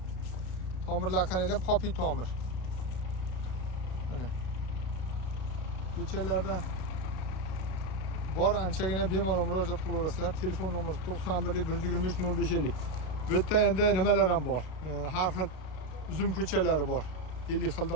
Tomirlar qaranglar, popi tomir. Mana. Ko'chalardan bor anchagina bemalol murojaat qilaverasizlar. Telefon nomeri 91 123 0550. Bu yerda endi nimalar ham bor. Har xil uzum ko'chalari bor. 50 xildan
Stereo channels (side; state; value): right; late; 32 ms